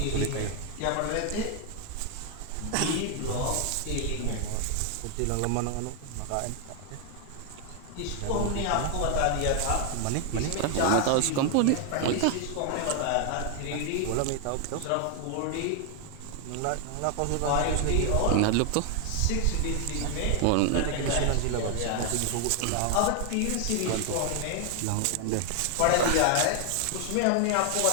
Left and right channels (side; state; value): both; different; correlation 0.00